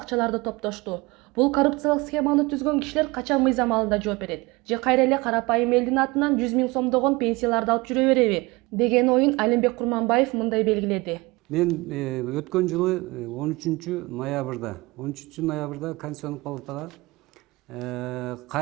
топтошту. Бул коррупциялык схеманы түзгөн кишилер качан мыйзам алдында жооп берет? Же кайра эле карапайым элдин атынан 100 000 сомдогон пенсияларды алып жүрө береби? Деген оюн Алимбек Курманбаев мындай белгиледи. Мен өткөн жылы 13 ноябрда Конституциялык палатага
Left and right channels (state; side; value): quieter; left; 23.4 dB